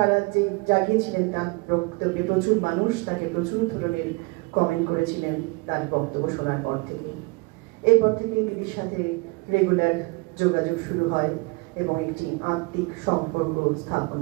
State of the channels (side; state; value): left; quieter; 27.0 dB